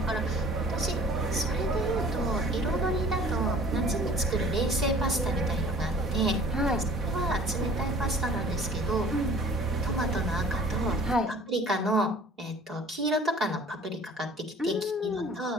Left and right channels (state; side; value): normal; both; correlation 0.49